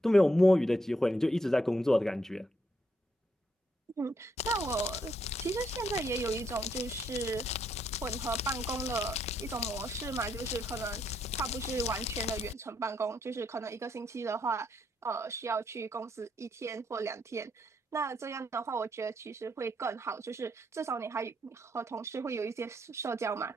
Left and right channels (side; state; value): both; normal; correlation 0.76